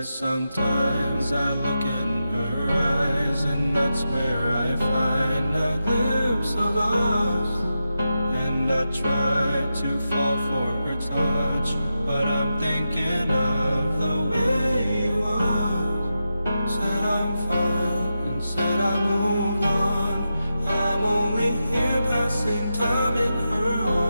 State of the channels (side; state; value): both; inverted; correlation -0.89